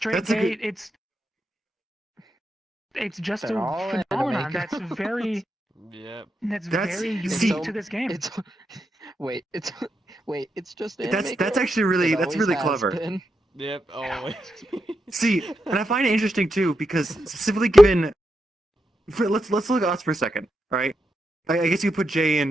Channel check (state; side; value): normal; both; correlation 0.86